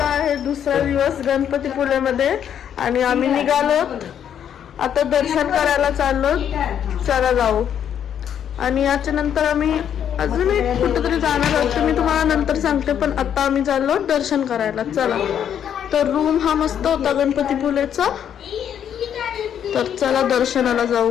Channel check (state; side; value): quieter; right; 9.1 dB